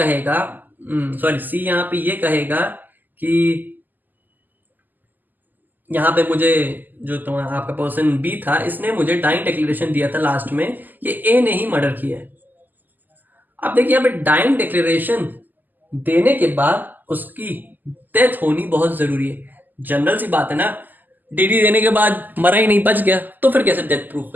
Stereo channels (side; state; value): left; late; 0.086 ms